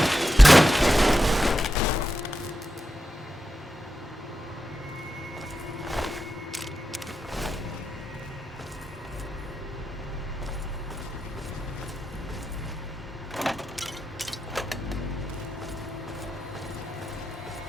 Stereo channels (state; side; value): normal; both; correlation 0.89